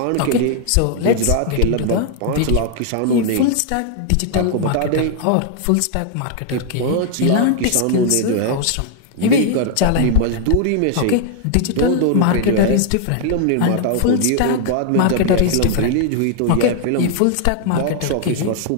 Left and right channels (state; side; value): different; both; correlation 0.00